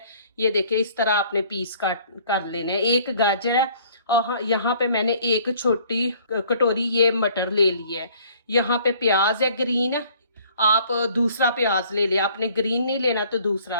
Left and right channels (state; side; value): inverted; both; correlation -0.56